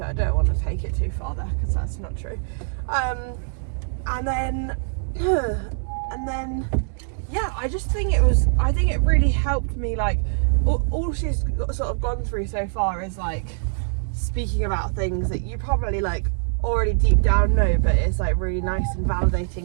I don't want to take it too far there, because that's not true. And then yeah, I just think I think it really helped me, like, all she's sort of gone through so far is like speaking about things that you probably like already deep down know, but it's like really nice and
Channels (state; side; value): silent; left; digital silence